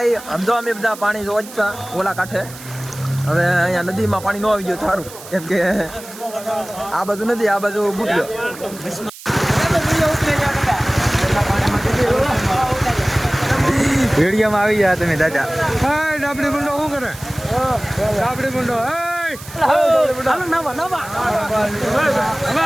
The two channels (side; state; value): right; noise; hiss, 16 dB below the sound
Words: આમ તો અમે બધા પાણી જોતા ઓલા કાંઠે. હવે અહીંયા નદીમાં પાણી ન આવી ગયું સારું, કેમ કે આ બાજુ નથી, આ બાજુ બુટ્યો. વિડીયોમાં આવી ગયા તમે દાદા. ડાબડી મુંડો શું કરે? ડાબડી મુંડો